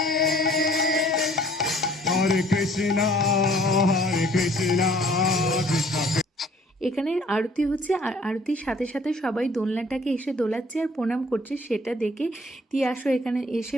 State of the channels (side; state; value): both; normal; correlation 0.56